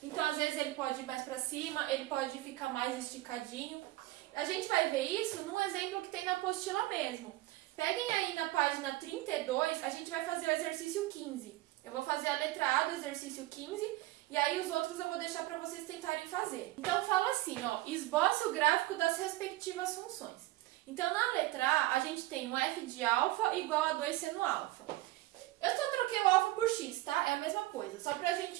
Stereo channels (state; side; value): quieter; left; 17.7 dB